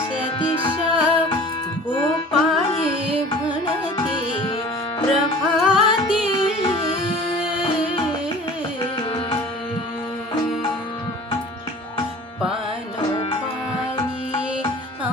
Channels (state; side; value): normal; both; correlation 0.43